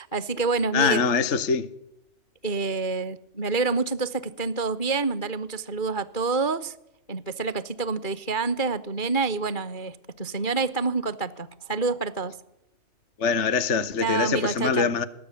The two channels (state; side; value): late; right; 2.4 ms